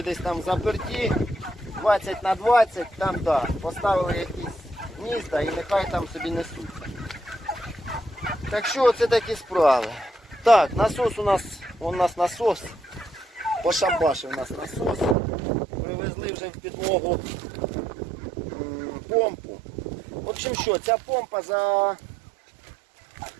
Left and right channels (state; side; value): drops out; left; at 15.2 s